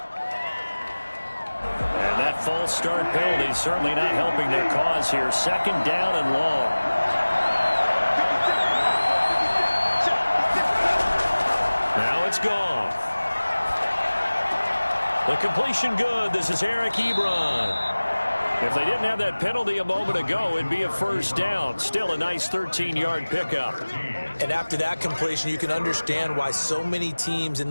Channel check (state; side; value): inverted; both; correlation -1.00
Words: False start penalty certainly not helping their cause here. 2nd down and long. Now it's Goff. The completion good. This is Eric Ebron. If they didn't have that penalty a moment ago, it'd be a 1st down. Still a nice 13-yard pickup. And after that completion, you can understand why so many teams in